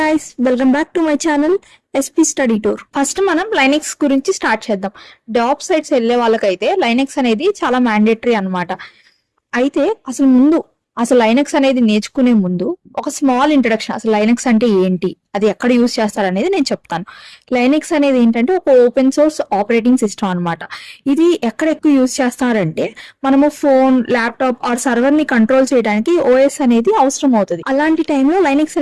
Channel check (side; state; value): both; identical; correlation 1.00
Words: welcome back to my channel SP study tour. First మనం Linux గురించి start చేద్దాం. Job sites వెళ్ళే వాళ్ళకైతే లైనెక్స్ అనేది చాలా మ్యాండేటరీ అన్నమాట. అయితే అసలు లైనెక్స్ అనేది నేర్చుకునే ముందు ఒక స్మాల్ ఇంట్రడక్షన్, అసలు లైనెక్స్ అంటే ఏంటి, అది ఎక్కడ యూజ్ చేస్తారు అనేది నేను చెప్తాను. లైనెక్స్ అనేది ఏంటంటే ఒక ఓపెన్ సోర్స్ ఆపరేటింగ్ సిస్టమ్ అన్నమాట. ఇది ఎక్కడ ఎక్కువ యూజ్ చేస్తారంటే మనము ఫోన్, ల్యాప్టాప్ ఆర్ సర్వర్ ని కంట్రోల్ చేయడానికి ఓఎస్ అనేది అవసరం అవుతుంది. అలాంటి టైంలో లైనెక్స్